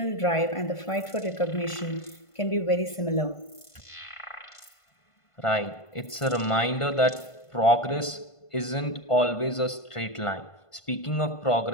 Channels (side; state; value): right; late; 1.5 ms